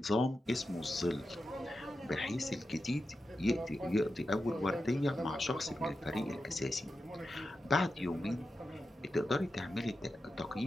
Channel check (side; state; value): both; normal; correlation 0.90